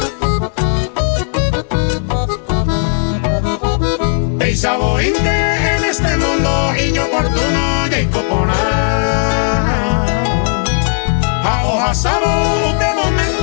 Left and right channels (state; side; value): silent; right; digital silence